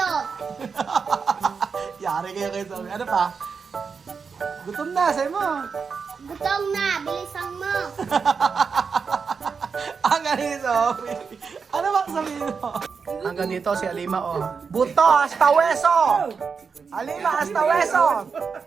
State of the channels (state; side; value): quieter; left; 5.6 dB